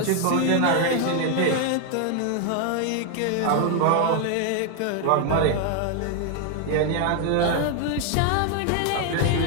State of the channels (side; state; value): both; different; correlation 0.00